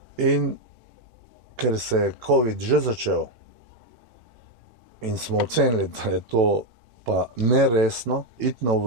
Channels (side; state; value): left; late; 18 ms